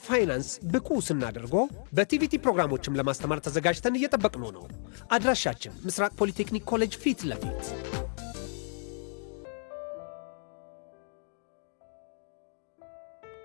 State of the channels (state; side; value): silent; right; 57 dB below the other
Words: ፋይናንስ ብቁ ስናደርጎ በቲቪቲ ፕሮግራሞችም ለማስተማር ተዘጋጅተን እየጠበቅን ነው። አድራሻችን ምስራቅ ፖሊቴክኒክ ኮሌጅ ፊት ለፊት።